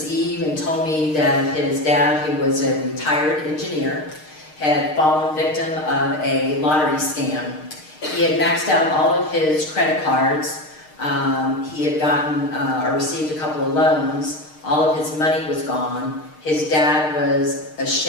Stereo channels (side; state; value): right; late; 6.5 ms